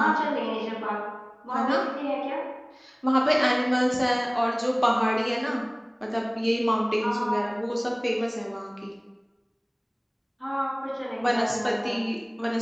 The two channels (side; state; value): both; identical; correlation 1.00